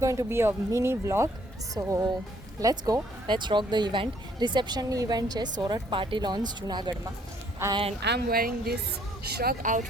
to be a mini vlog. So let's rock the event. Reception event is Sorat Party Launch Junagadh ma, and I'm wearing this shrug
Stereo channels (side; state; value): both; normal; correlation 0.65